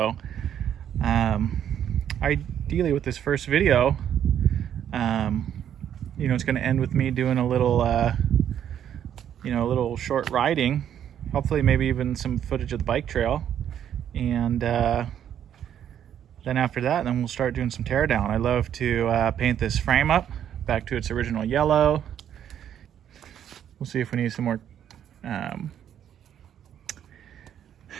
ideally with this first video, you know, it's going to end with me doing a little you know, a little short riding, hopefully maybe even some footage of the bike trail, and then after that, then we'll start doing some tear down. I love to paint this frame up back to its original yellow. We'll see if we need some more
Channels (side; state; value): left; quieter; 9.7 dB